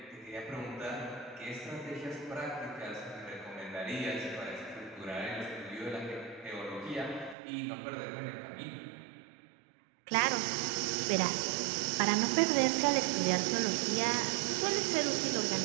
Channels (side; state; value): left; drops out; at 7.4 s